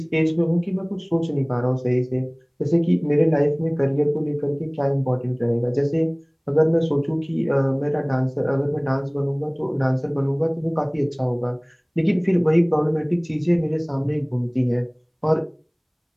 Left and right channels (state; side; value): identical; both; correlation 1.00